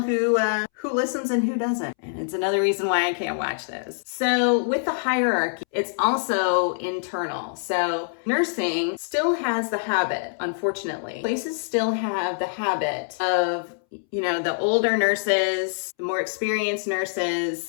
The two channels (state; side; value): silent; right; 62 dB below the other